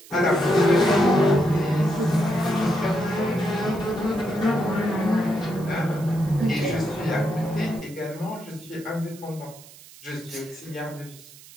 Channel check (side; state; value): right; noise; hiss, 21 dB below the sound